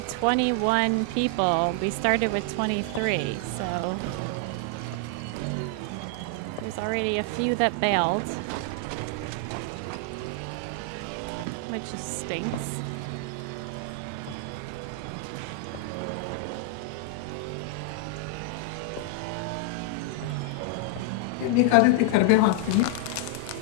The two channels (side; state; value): both; different; correlation 0.00